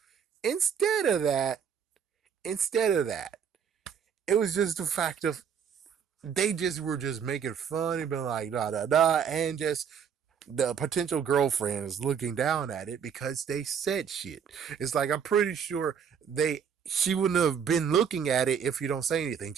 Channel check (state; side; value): quieter; left; 7.5 dB